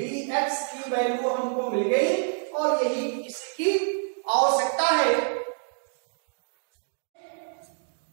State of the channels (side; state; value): left; silent; digital silence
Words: की वैल्यू हमको मिल गई, और यही इसकी आवश्यकता है।